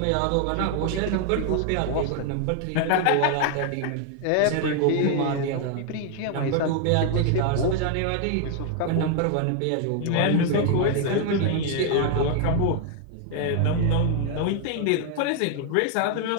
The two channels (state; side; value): different; both; correlation 0.00